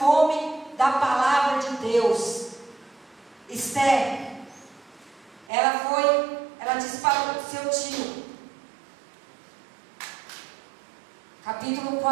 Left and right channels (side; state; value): left; drops out; at 5.5 s